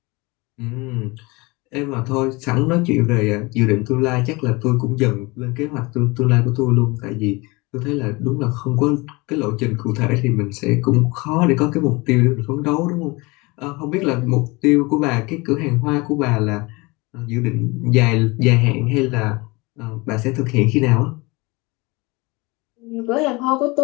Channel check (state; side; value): quieter; right; 24.8 dB